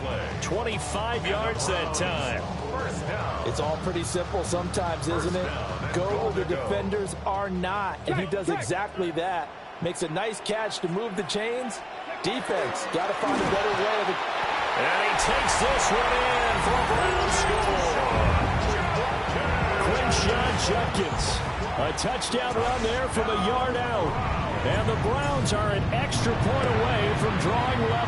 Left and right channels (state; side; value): identical; both; correlation 1.00